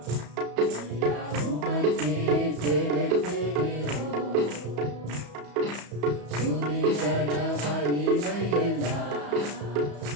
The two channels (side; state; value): left; late; 34 ms